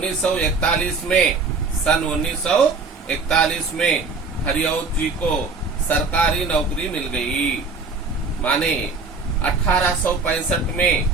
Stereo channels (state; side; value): quieter; left; 4.2 dB